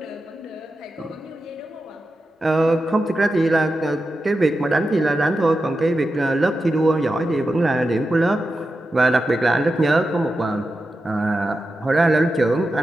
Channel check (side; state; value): both; normal; correlation 0.90